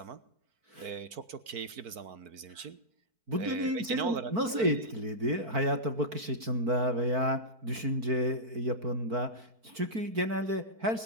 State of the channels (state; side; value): late; left; 4.5 ms